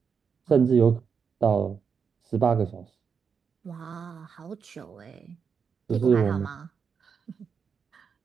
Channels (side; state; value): left; quieter; 6.3 dB